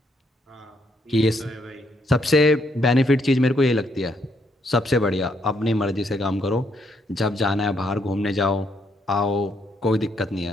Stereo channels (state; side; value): normal; both; correlation 0.74